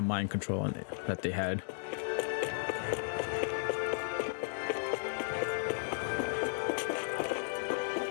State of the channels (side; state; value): right; silent; 55 dB below the other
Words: mind control that they had.